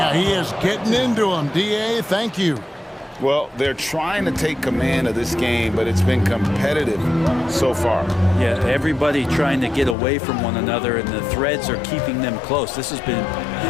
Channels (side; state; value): right; drops out; at 10.0 s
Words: he is getting into him. D.A., thank you. Well, they're trying to take command of this game, but it's been competitive so far. Yeah, everybody trying to get away from one another, and the threads are keeping them close. This has been